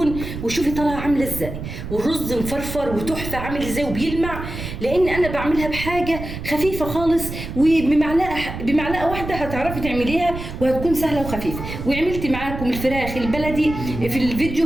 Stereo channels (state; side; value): noise; right; rumble, 8 dB below the sound